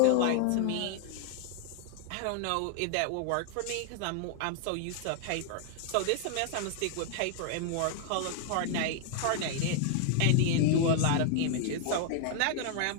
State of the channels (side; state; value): both; different; correlation 0.00